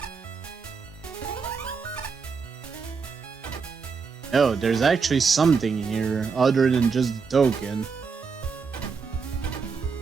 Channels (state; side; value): quieter; left; 5.4 dB